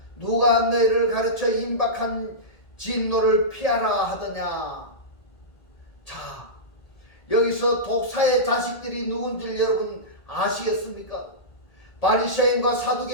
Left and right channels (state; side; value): late; right; 1.8 ms